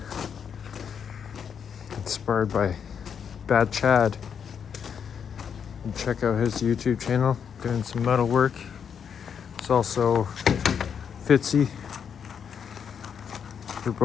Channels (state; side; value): quieter; right; 7.4 dB